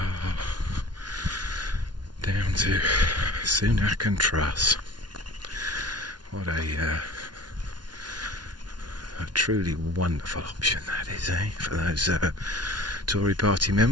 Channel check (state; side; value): late; left; 0.70 ms